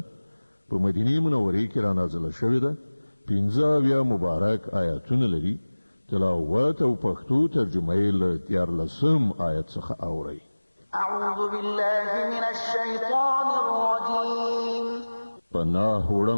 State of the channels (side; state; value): both; inverted; correlation -1.00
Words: په مدینه منوره کې را نازله شوې ده. 15 مبارک آیاتونه لري. تلاوت او پښتو ترجمه یې له 14 آیت څخه اورئ. اعوذ بالله من الشیطان الرجیم. پناه